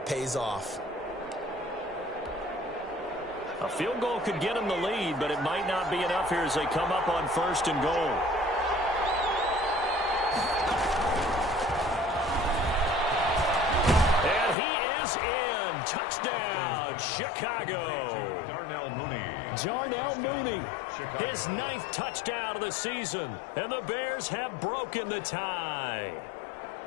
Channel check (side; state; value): right; drops out; at 14.6 s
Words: pays off. A field goal could get them the lead, but it might not be enough here as they come up on 1st and goal. And he is in. Touchdown, Chicago. Darnell Mooney, his 9th touchdown of the season. And the Bears have broken the tie.